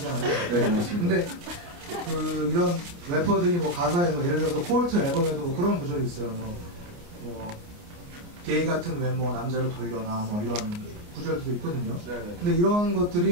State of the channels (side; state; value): left; late; 29 ms